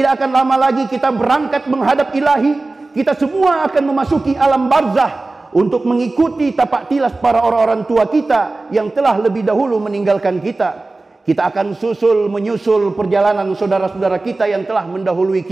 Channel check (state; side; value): quieter; left; 3.2 dB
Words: akan lama lagi kita berangkat menghadap ilahi. Kita semua akan memasuki alam barzah untuk mengikuti tapak tilas para orang-orang tua kita yang telah lebih dahulu meninggalkan kita. Kita akan menyusul perjalanan saudara-saudara kita yang telah mendahului